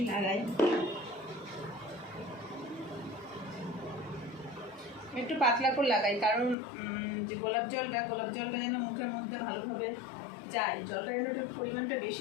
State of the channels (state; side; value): drops out; right; at 6.6 s